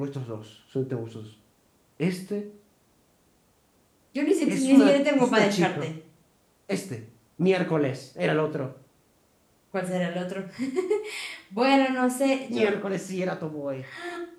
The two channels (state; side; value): identical; both; correlation 1.00